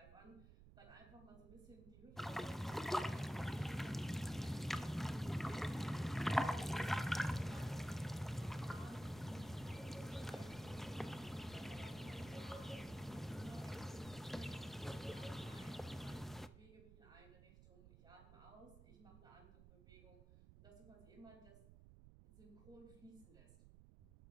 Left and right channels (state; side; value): noise; right; rumble, 18 dB below the sound